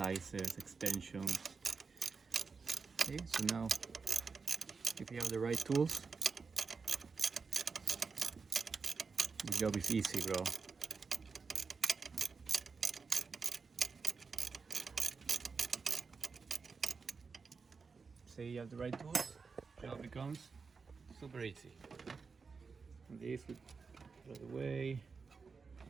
extensions. Okay, so now if you have the right tools, the job is easy, bro. Say you have the right tools, job becomes super easy. And this we put out of the way.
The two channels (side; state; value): left; quieter; 4.9 dB